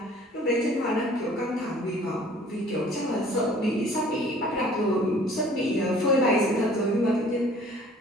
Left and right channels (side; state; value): both; normal; correlation 0.52